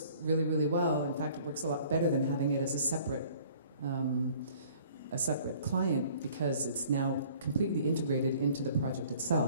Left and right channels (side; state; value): both; inverted; correlation -0.54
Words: really, really well. In fact, it works a lot better than having it as a separate client, because it's now completely integrated into the project